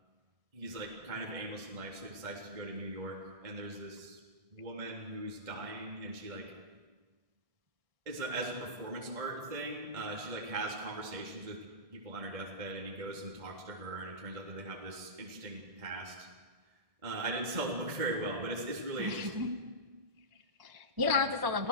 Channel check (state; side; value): late; left; 1.6 ms